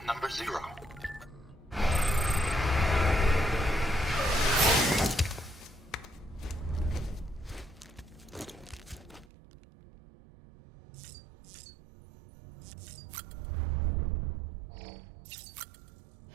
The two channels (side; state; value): left; drops out; at 9.2 s